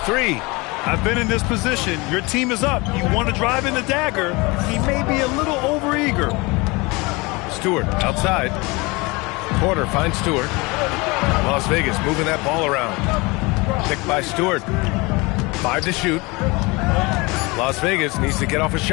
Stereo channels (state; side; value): quieter; right; 25.3 dB